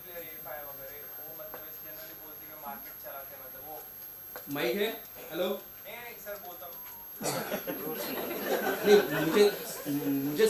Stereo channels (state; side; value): identical; both; correlation 1.00